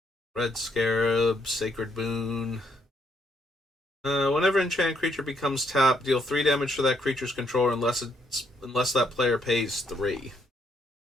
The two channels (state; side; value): normal; both; correlation 0.72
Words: Red Scarab, Sacred Boon. Whenever enchanted creature becomes tapped, deal 3 damage to that creature's controller unless that player pays 3.